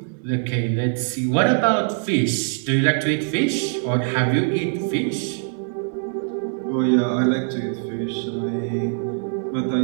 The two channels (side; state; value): left; silent; 63 dB below the other